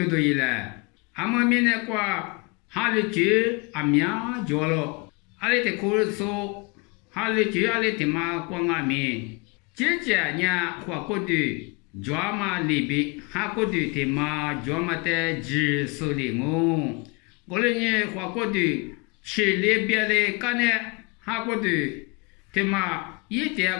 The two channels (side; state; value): right; quieter; 29.5 dB